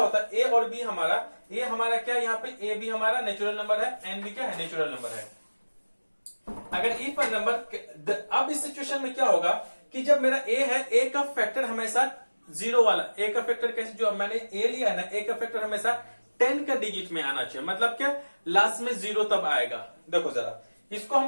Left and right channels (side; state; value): both; inverted; correlation -1.00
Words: है, a और b हमारा, a हमारा क्या यहाँ पे a b हमारा नेचुरल नंबर है, n b क्या है नेचुरल नंबर है। अगर इफ पर नंबर, अब इस सिचुएशन में क्या होगा कि जब मेरा a है, a का फैक्टर हमेशा 0 वाला, a का फैक्टर कैसे, जो मैंने a लिया है ना, a का फैक्टर हमेशा 10 का डिजिट में आना चाहिए। मतलब क्या, लास्ट में 0 तब आएगा। देखो जरा इसको हम